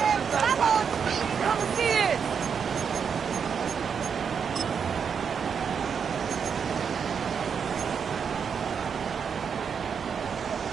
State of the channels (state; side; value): quieter; left; 6.7 dB